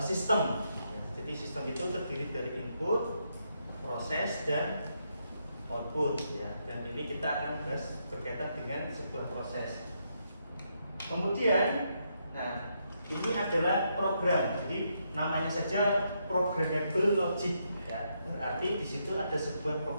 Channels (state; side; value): inverted; both; correlation -0.79